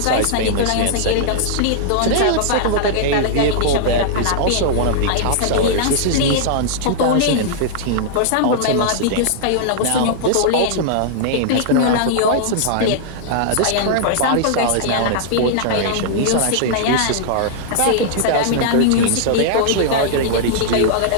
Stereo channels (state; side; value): different; both; correlation -0.01